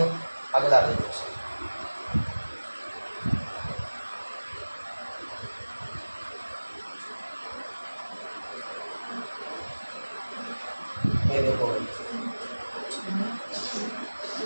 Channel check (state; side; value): inverted; both; correlation -1.00